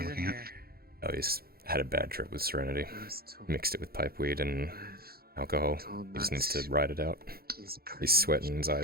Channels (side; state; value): left; late; 0.44 ms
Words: I looking at? Oh, he's had a bad trip with Serenity. Mixed it with pipeweed and alcohol. He just needs to ride it out. He's sweating, his